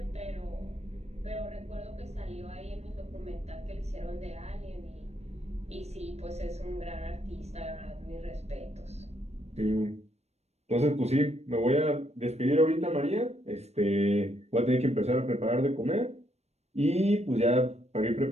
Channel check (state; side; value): late; left; 0.31 ms